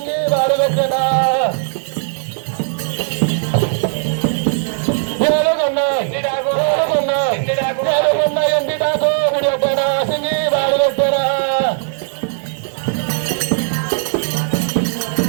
వాడు పెట్టేనా ఎండిటాకు విడిపెట్టేనా సింగి వాడు పెట్టేనా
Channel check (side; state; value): left; silent; digital silence